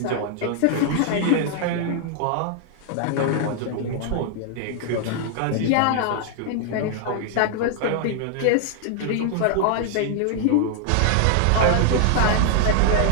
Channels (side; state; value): both; different; correlation 0.00